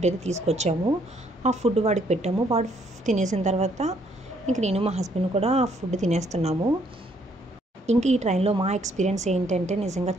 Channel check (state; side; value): normal; both; correlation 0.68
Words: అయితే తీసుకొచ్చాము. ఆ ఫుడ్ వాడికి పెట్టాము. వాడు తినేసిన తర్వాత ఇంక నేను మా హస్బెండ్ కూడా ఆ ఫుడ్ తినేస్తున్నాము. ఇంక ఈ ట్రైన్లో మా ఎక్స్పీరియన్స్ ఏంటంటే నిజంగా